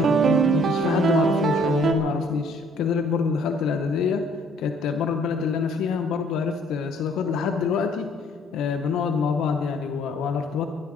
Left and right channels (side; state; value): both; normal; correlation 0.60